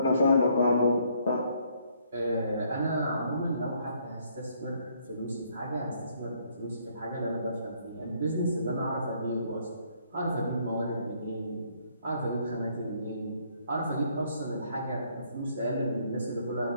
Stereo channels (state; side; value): inverted; both; correlation -0.67